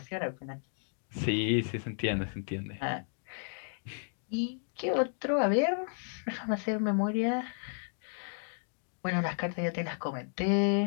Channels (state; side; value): silent; right; 56 dB below the other